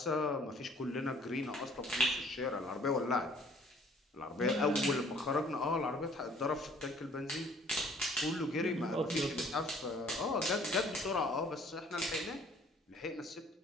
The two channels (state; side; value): normal; both; correlation 0.57